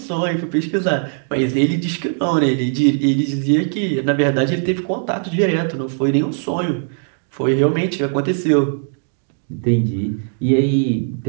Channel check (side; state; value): left; silent; digital silence